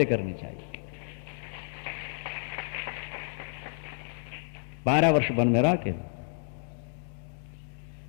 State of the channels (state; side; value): silent; right; 57 dB below the other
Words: करनी चाहिए। 12 वर्ष वन में रह के